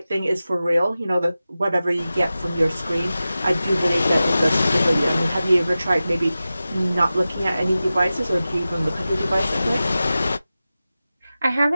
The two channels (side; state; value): both; inverted; correlation -0.95